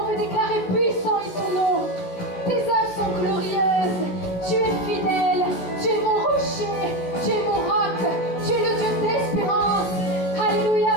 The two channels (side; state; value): right; late; 16 ms